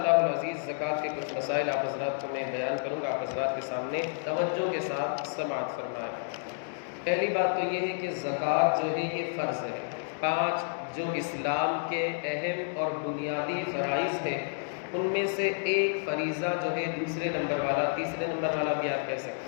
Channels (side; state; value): right; silent; digital silence